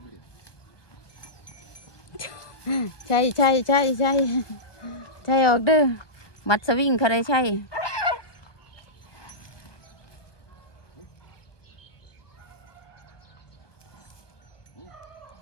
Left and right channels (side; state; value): right; late; 1.2 ms